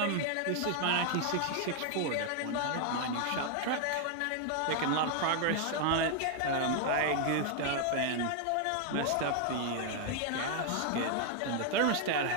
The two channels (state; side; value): different; both; correlation 0.00